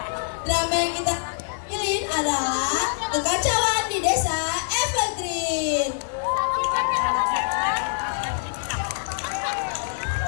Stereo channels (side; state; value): right; silent; digital silence